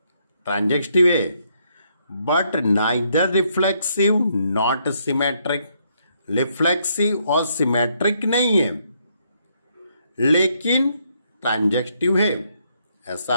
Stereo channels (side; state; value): both; inverted; correlation -0.73